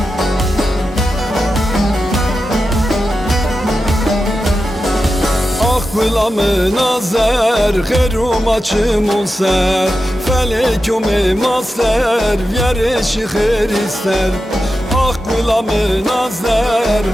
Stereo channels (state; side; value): normal; both; correlation 0.91